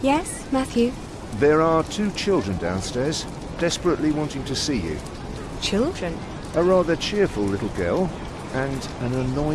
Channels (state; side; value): identical; both; correlation 1.00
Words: Yes, Matthew? there are 2 children downstairs, desperately wanting to see you. Children? A rather cheerful little girl and an